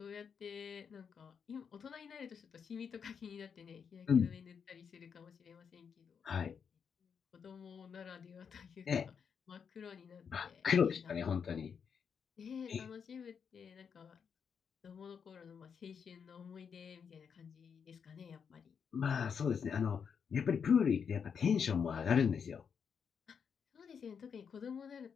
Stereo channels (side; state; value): right; quieter; 6.7 dB